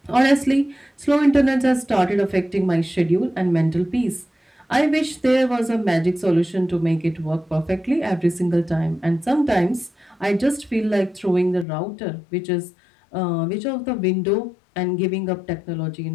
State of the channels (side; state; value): right; drops out; at 11.7 s